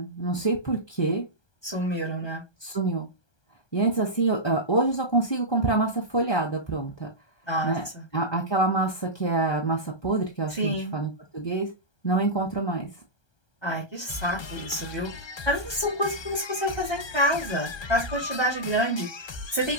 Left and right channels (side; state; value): right; late; 1.3 ms